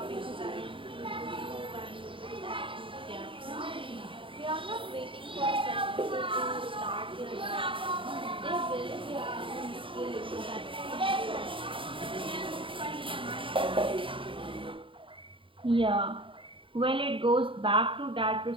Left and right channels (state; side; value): late; left; 0.25 ms